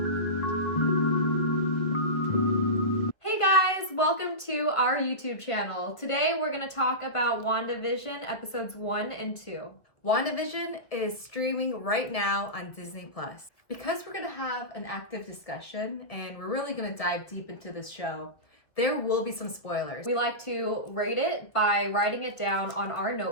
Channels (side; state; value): right; late; 1.8 ms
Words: Hey guys, welcome to our YouTube channel. Today we're going to talk about WandaVision episodes 1 and 2. WandaVision is streaming right now on Disney+. Because we're going to have an active discussion and we're really going to dive deep into this show, there will be some spoilers. We like to rate it by writing it down on our